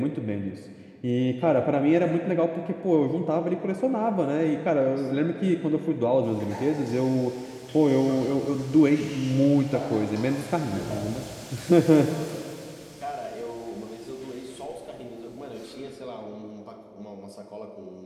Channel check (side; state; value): both; identical; correlation 1.00